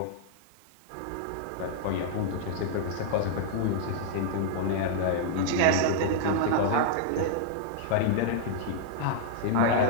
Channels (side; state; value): both; different; correlation -0.01